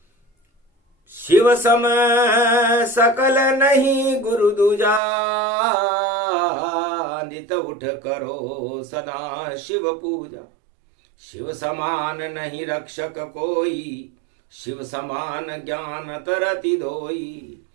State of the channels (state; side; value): drops out; left; at 5.0 s